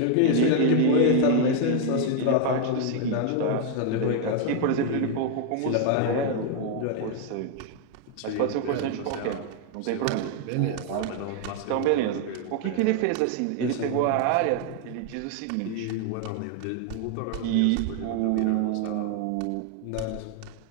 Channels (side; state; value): both; different; correlation 0.00